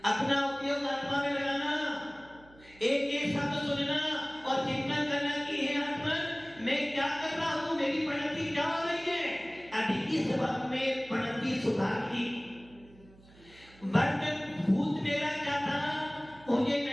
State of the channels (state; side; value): noise; right; hum, 24 dB below the sound